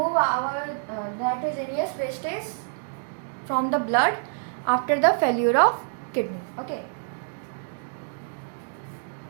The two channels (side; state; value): left; silent; digital silence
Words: our nitrogenous wastage from the blood after the failure of kidney. Okay.